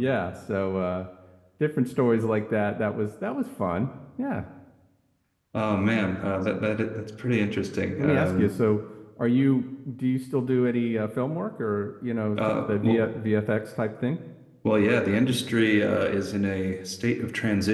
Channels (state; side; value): identical; both; correlation 1.00